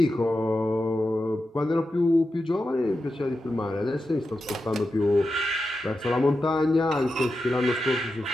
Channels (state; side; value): normal; both; correlation 0.90